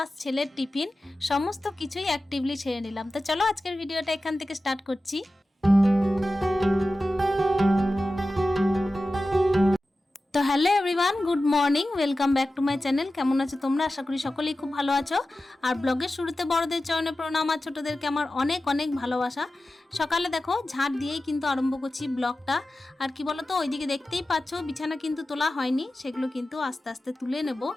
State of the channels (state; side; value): normal; both; correlation 0.94